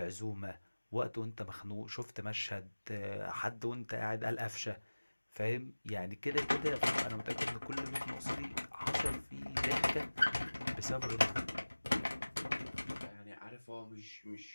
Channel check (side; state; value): both; inverted; correlation -1.00